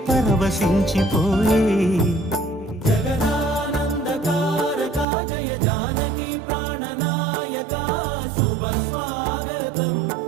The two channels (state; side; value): drops out; left; at 5.1 s